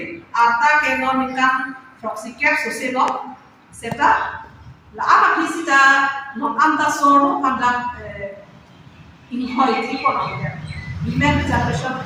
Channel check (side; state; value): both; identical; correlation 1.00